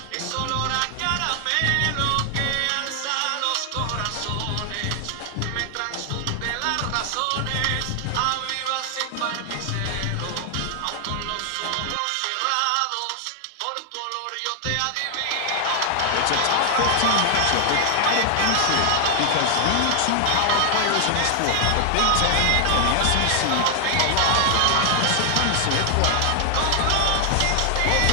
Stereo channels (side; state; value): both; different; correlation 0.00